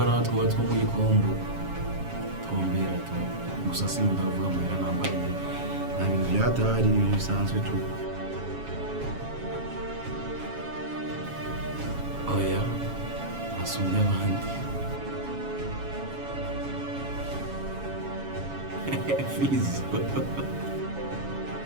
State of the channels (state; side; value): late; left; 7.2 ms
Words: two muri kombo twombera to gusa sinkunda kuvuga muhera nambaye nta bintu byatahari ibintu bisanzwe tu. Oya asumbya abandi Fizo